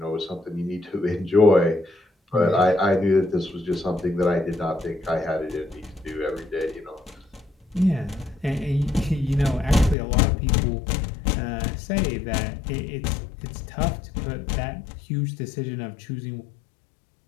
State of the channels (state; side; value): drops out; right; at 10.0 s